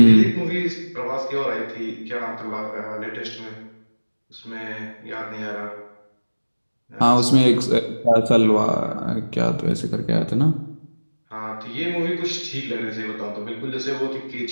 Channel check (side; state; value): both; inverted; correlation -1.00